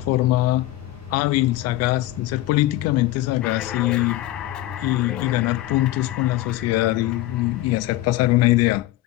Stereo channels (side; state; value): right; quieter; 16.3 dB